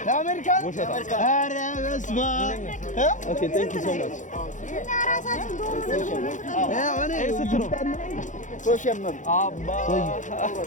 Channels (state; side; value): late; right; 0.36 ms